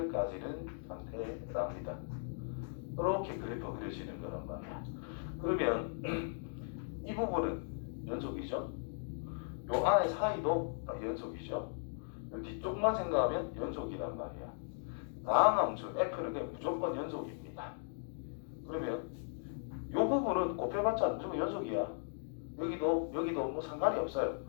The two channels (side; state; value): right; silent; digital silence